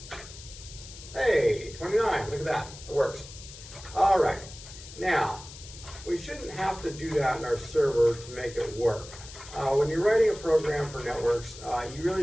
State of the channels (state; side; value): noise; left; hiss, 16 dB below the sound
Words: Hey, 29, look at that, it works. All right, now, we shouldn't have to do that in our server to make it work. When you're writing a program for networks, you